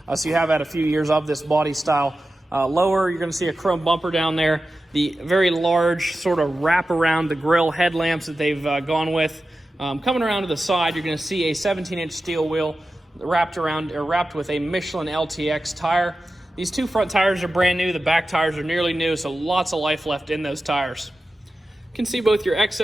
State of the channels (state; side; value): normal; both; correlation 0.93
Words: So you have had a few years of this body style. Lower, you're going to see a chrome bumper down there. The very large sort of wrap around the grille headlamps that they've gone with. Coming around to the side, you're going to see a 17-inch steel wheel wrapped with a Michelin LTX tire. These two front tires are brand new. The back tires are nearly new, so lots of life left in those tires. You can see both your